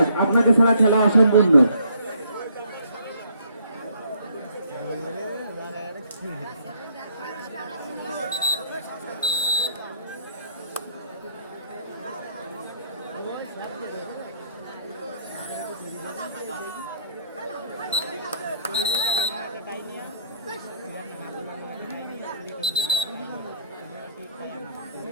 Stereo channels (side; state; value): both; inverted; correlation -0.66